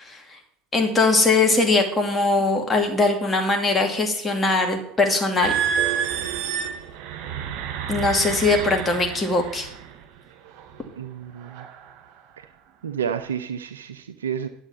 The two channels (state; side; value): normal; both; correlation 0.45